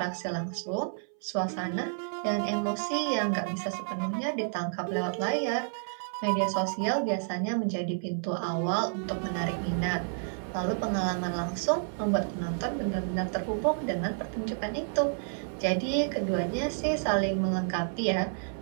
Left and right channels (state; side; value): silent; left; 58 dB below the other